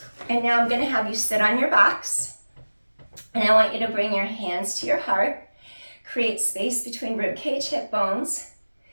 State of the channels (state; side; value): inverted; both; correlation -1.00